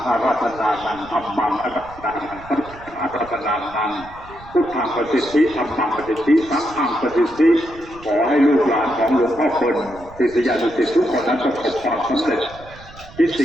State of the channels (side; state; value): right; noise; rumble, 20 dB below the sound